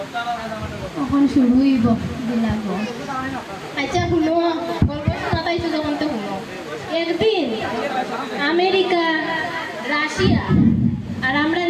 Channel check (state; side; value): identical; both; correlation 1.00